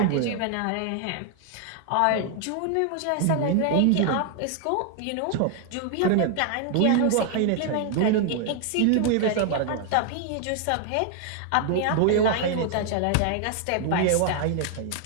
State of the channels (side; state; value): both; different; correlation 0.00